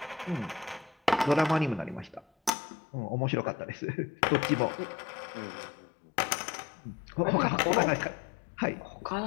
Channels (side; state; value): right; drops out; at 2.5 s